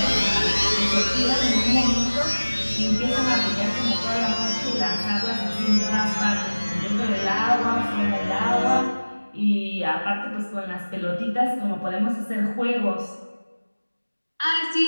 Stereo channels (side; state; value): both; inverted; correlation -1.00